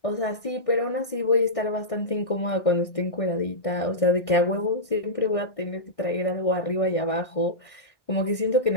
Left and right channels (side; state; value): right; late; 1.6 ms